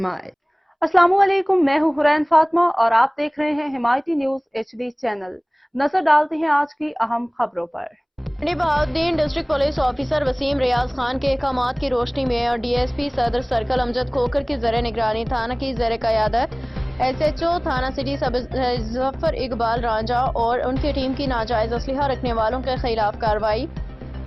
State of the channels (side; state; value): both; identical; correlation 1.00